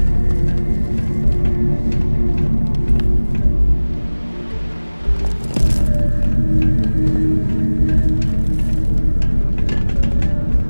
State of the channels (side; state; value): both; inverted; correlation -1.00